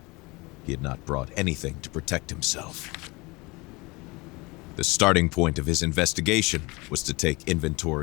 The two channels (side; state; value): right; quieter; 24.8 dB